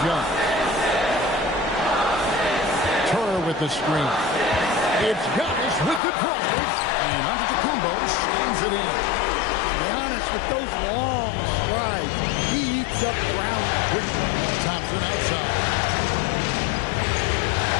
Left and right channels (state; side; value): drops out; right; at 6.0 s